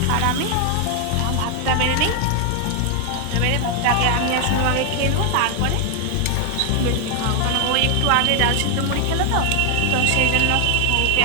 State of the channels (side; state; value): both; different; correlation 0.00